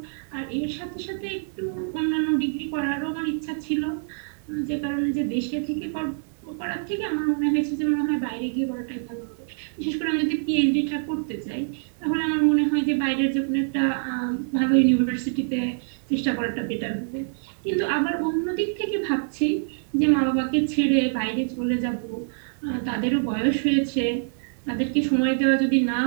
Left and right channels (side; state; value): left; silent; digital silence